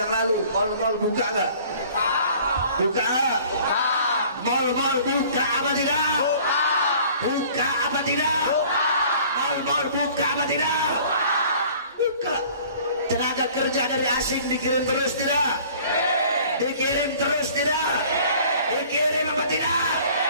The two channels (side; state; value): both; inverted; correlation -0.50